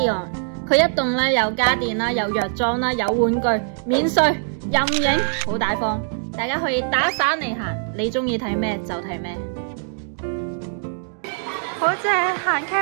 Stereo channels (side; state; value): left; silent; digital silence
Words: 佢一棟咧有家電啦，有藥妝啦，有玩具，免稅任影，好大方。大家可以打散嚟行，你中意睇咩就睇咩。好正，行